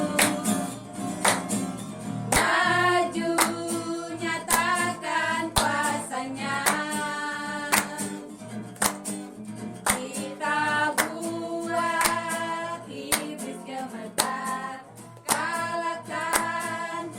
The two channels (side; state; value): both; identical; correlation 1.00